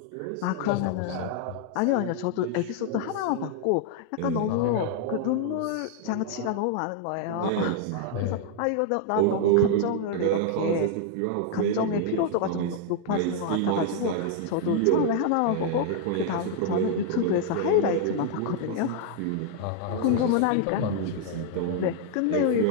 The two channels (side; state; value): both; different; correlation 0.00